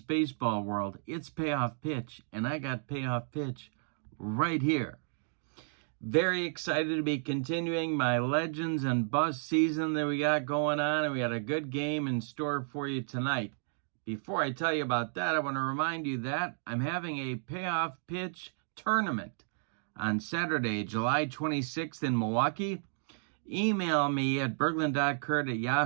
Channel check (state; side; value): silent; left; digital silence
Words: Baseball World, it's Payoff Pitch, and I got Payoff Pitch right here. Very excited to be continuing my Legends and BUSTS season that we got going on, and we got a good game in store for you tonight. Before I tell you about that, I want to remind you that I'm having a Payoff Pitch tournament on Saturday, July 26th in Milwaukee. Email me at